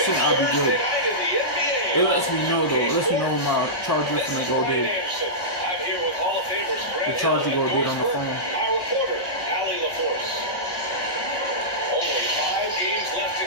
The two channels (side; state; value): right; late; 1.1 ms